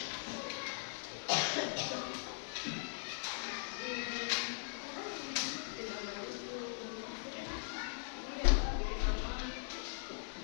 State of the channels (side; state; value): right; silent; digital silence